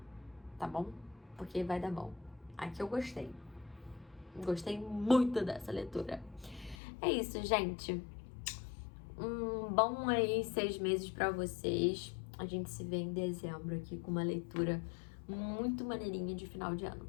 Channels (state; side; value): drops out; right; at 6.8 s